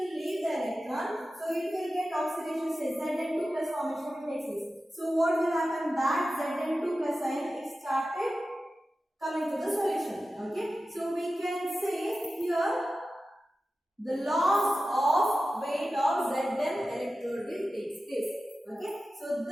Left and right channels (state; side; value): normal; both; correlation 0.94